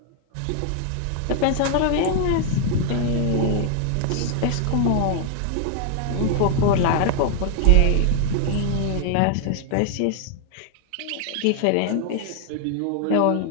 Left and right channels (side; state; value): both; different; correlation 0.00